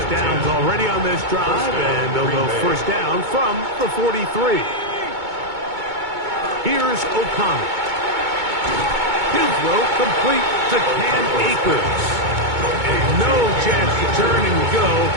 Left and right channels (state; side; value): late; left; 2.2 ms